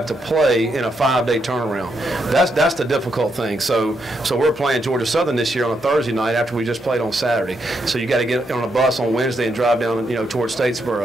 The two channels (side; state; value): both; normal; correlation 0.79